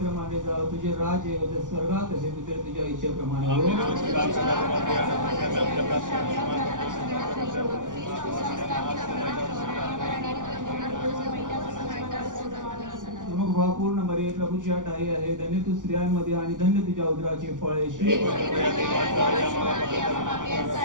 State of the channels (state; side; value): late; left; 0.87 ms